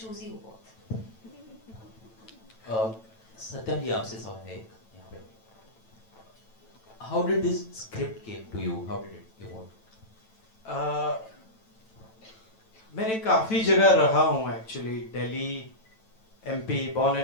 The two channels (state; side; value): late; right; 9.1 ms